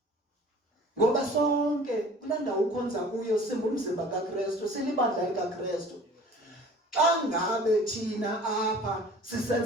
Ngoba sonke kulaa ndawo ukhonza kuyo simbumzimba kaKristu, silibandla likaKristu. Xa ngabe thina apha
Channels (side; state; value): both; normal; correlation 0.47